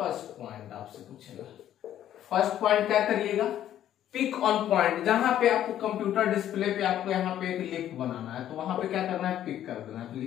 पॉइंट आपसे पूछेगा। फर्स्ट पॉइंट क्या करिएगा, पिक ऑन पॉइंट। जहां पे आपको कंप्यूटर डिस्प्ले पे आपको यहाँ पे एक लिख बनाना है तो वहां पे क्या करना है, पिक कर देना है। तो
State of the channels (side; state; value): right; quieter; 11.4 dB